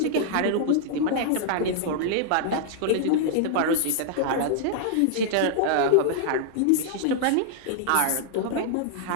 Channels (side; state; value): both; different; correlation -0.01